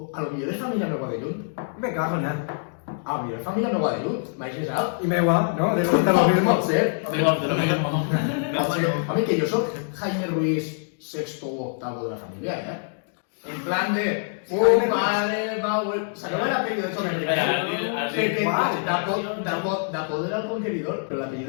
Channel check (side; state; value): right; silent; digital silence